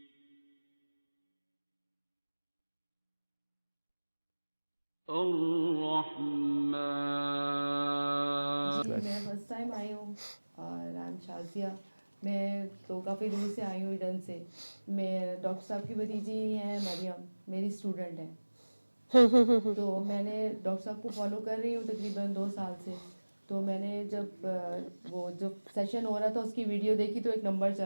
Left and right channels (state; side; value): inverted; both; correlation -1.00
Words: الرحمن. جی میں فرسٹ ٹائم آئی ہوں اور نام شازیہ. میں تو کافی دور سے آئی ہوں ایڈن سے. میں ڈاکٹر صاحب کی بھتیجی ہیں مریم، میری اسٹوڈنٹ ہیں. تو میں نے ڈاکٹر صاحب کو فالو کر رہی ہوں تقریباً 2 سال سے. تو میں نے جب وہ جو سیشن ہو رہا تھا اس کی ویڈیو دیکھی تو ایک نمبر